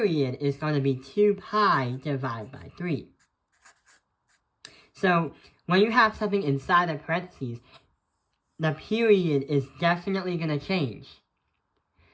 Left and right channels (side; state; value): both; identical; correlation 1.00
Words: is going to be 2 pi divided by 3. So when you have something inside the parentheses, the period is definitely going to change.